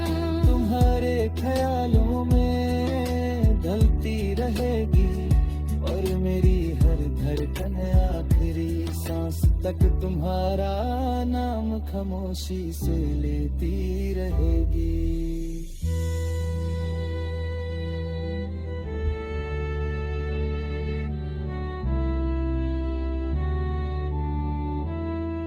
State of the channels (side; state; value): both; identical; correlation 1.00